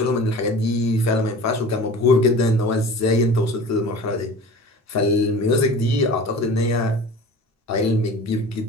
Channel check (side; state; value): both; normal; correlation 0.39